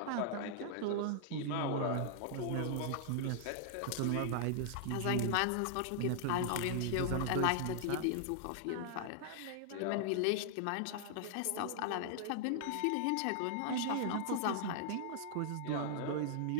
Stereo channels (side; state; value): both; different; correlation -0.01